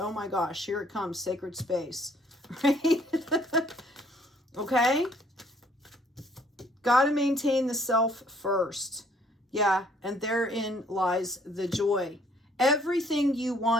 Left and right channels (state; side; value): normal; both; correlation 0.62